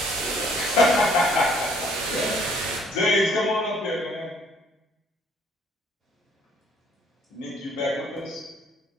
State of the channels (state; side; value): normal; both; correlation 0.61